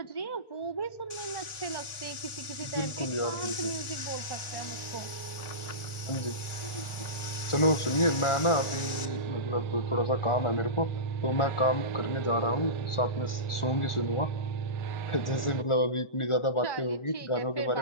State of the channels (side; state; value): right; late; 1.4 ms